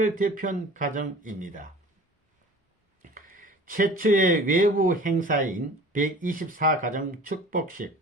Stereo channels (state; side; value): normal; both; correlation 0.43